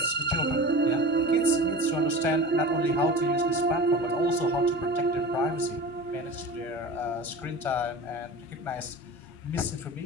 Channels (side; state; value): both; normal; correlation 0.34